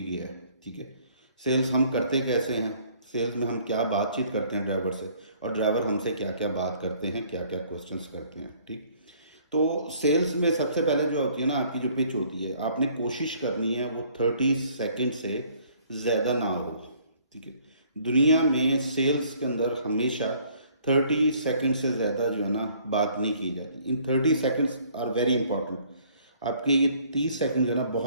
क्या है। ठीक है, सेल्स हम करते कैसे हैं, सेल्स में हम क्या बातचीत करते हैं ड्राइवर से, और ड्राइवर हमसे क्या क्या बात करते हैं, क्या क्या क्वेश्चंस करते हैं। ठीक, तो सेल्स में सबसे पहले जो होती है ना आपकी जो पिच होती है, आपने कोशिश करनी है वो 30 सेकेंड से ज़्यादा ना हो। ठीक है, दुनिया में सेल्स के अंदर हमेशा 30 सेकेंड से ज़्यादा जो है ना बात नहीं की जाती। इन 30 सेकेंड्स आर वेरी इंपॉर्टेंट। आपके ये 30 सेकंड जो है ना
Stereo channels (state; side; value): inverted; both; correlation -0.60